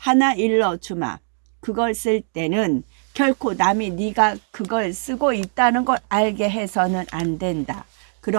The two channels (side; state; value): left; silent; 65 dB below the other